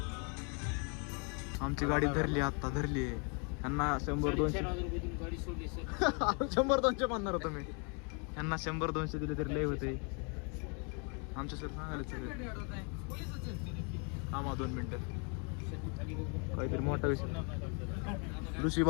आमची गाडी धरली, आता धरली. यांना 100-200 गाडी सोडली सर. 100-200 म्हणणार होतो मी. यांना 100-200 दिले तरी लय होते. आमच्या सर सांगायला सगळे. थांबा 2 मिनिटं. काहीतरी मोठा विषय. ऋषी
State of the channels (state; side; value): quieter; right; 36.3 dB